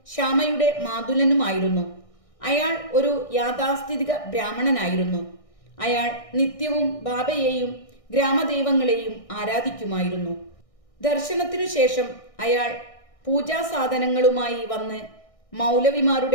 ശ്യാമയുടെ മാതുലനുമായിരുന്നു. അയാൾ ഒരു യാഥാസ്ഥിതിക ബ്രാഹ്മണനായിരുന്നു. അയാൾ നിത്യവും ബാബയെയും ഗ്രാമദൈവങ്ങളെയും ആരാധിക്കുമായിരുന്നു. ദർശനത്തിനു ശേഷം അയാൾ പൂജാസാധനങ്ങളുമായി വന്ന്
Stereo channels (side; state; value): right; late; 1.6 ms